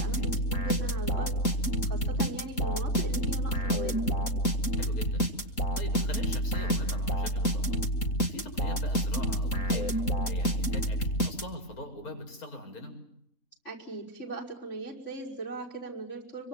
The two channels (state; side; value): late; right; 3.8 ms